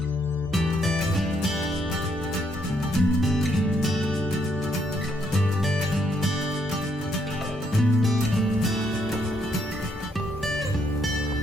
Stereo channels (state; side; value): normal; both; correlation 0.73